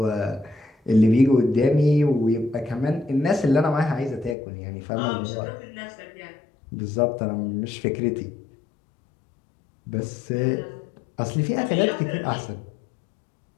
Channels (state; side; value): drops out; right; at 4.4 s